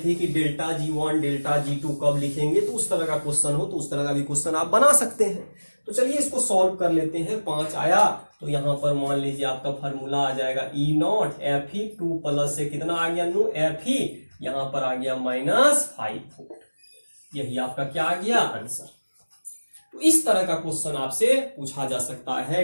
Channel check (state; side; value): inverted; both; correlation -1.00